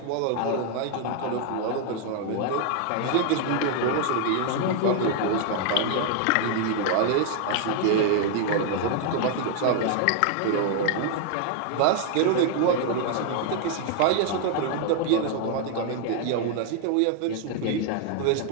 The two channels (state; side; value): different; both; correlation 0.00